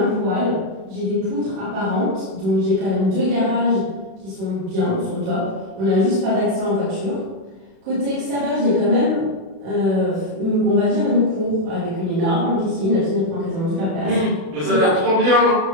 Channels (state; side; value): late; left; 36 ms